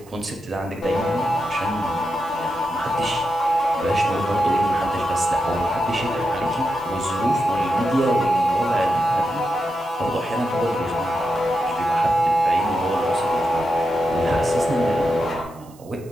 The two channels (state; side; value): noise; right; hiss, 26 dB below the sound